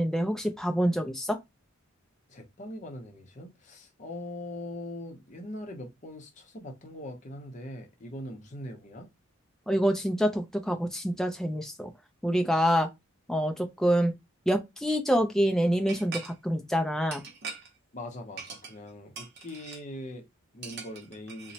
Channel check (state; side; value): normal; both; correlation 0.88